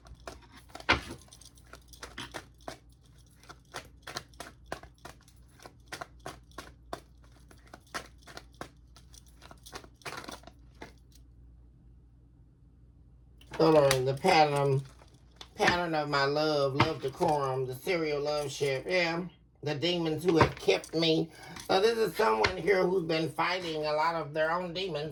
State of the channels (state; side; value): identical; both; correlation 1.00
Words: Coloring the pattern of my love decorum, the serial love ship, yeah. The demons who have kept me. So this is someone here who's been fighting a lot of their own